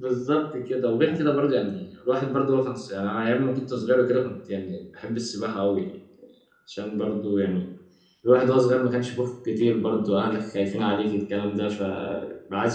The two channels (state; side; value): identical; both; correlation 1.00